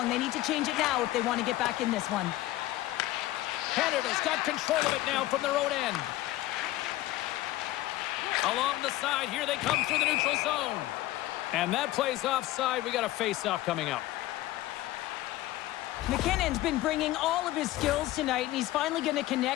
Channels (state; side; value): quieter; right; 16.4 dB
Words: They need to change it now if they want to get back in this one. Canada's got control of it now from their own end. Along the side, here they come through the neutral zone. And that plays offside. We got a face-off coming up. McKinnon's been bringing all of his skills tonight, and he's finally going to